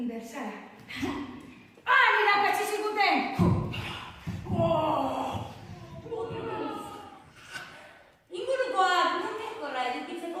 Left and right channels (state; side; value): identical; both; correlation 1.00